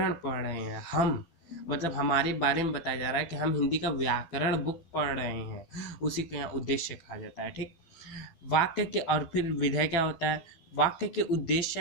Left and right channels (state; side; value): late; right; 12 ms